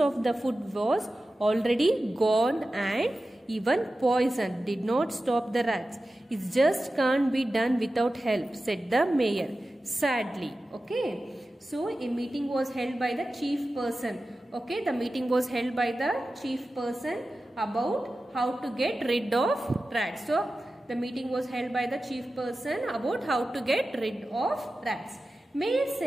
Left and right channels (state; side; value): normal; both; correlation 0.94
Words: the food was already gone, and even poison did not stop the rats. It just can't be done without help, said the mayor sadly. Okay. So a meeting was held by the chief person. Okay. The meeting was held by the chief person about how to get rid of rats. So the meeting was held by the chief person about how to get rid of rats. Mayor